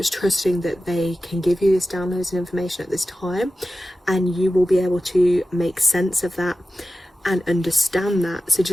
trusting that they can give you this downloads and information at this time, and you will be able to make sense of that and understand that. So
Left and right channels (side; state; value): both; normal; correlation 0.94